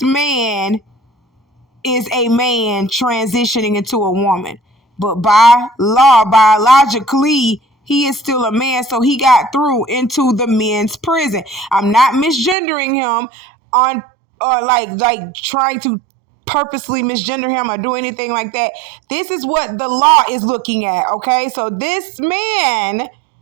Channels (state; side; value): drops out; left; at 12.6 s